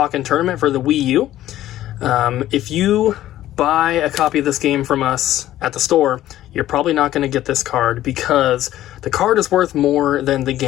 Tournament for the Wii U. If you buy a copy of this game from us at the store, you're probably not going to get this card because the card is worth more than the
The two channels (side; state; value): right; quieter; 13.7 dB